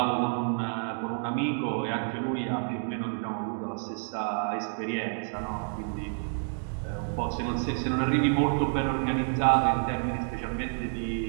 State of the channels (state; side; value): silent; left; 58 dB below the other